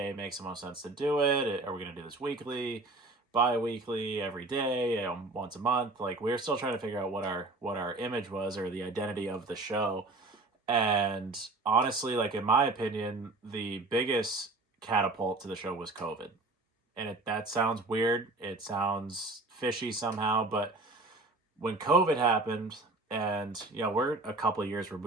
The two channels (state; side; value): quieter; left; 3.1 dB